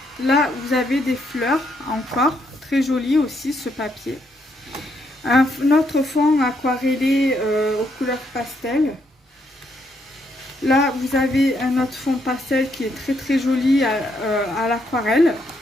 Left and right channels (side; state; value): both; normal; correlation 0.75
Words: Là, vous avez des fleurs encore. Très joli aussi, ce papier. Un autre fond aquarellé aux couleurs pastel. Là, vous avez un autre fond pastel qui est très joli à l'aquarelle.